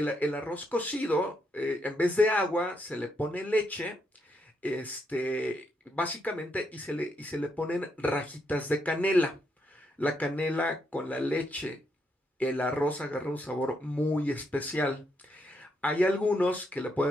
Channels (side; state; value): both; normal; correlation 0.78